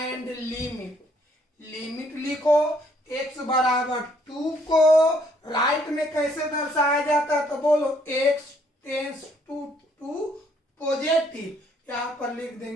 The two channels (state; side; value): normal; both; correlation 0.67